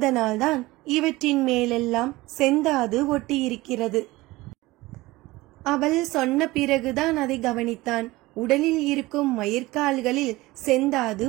இவற்றின் மேலெல்லாம் செந்தாது ஒட்டியிருக்கிறது. அவள் சொன்ன பிறகுதான் அதை கவனித்தான். உடலில் இருக்கும் மயிர்கால்களில் செந்தாது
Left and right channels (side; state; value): left; quieter; 19.8 dB